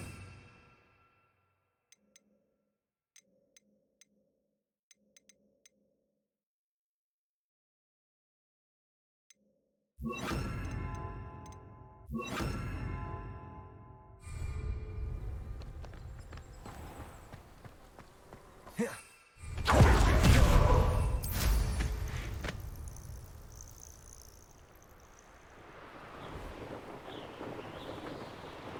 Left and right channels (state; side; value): identical; both; correlation 1.00